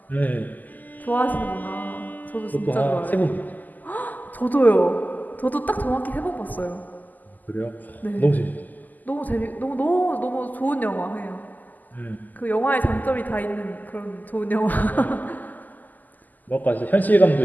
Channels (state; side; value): late; right; 0.083 ms